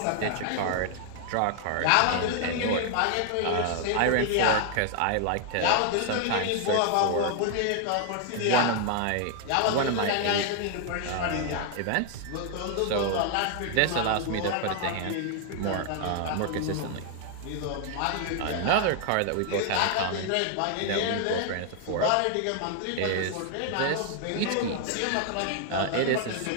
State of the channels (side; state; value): both; different; correlation 0.00